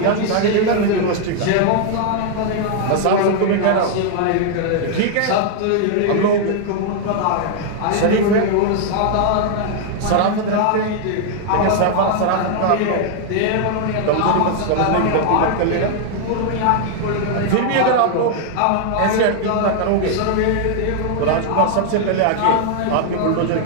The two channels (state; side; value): different; both; correlation 0.00